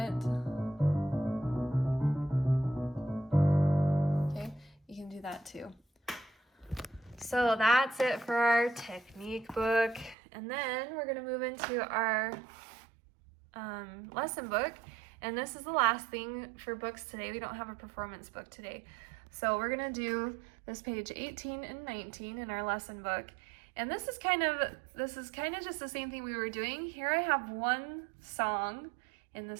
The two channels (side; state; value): left; drops out; at 10.2 s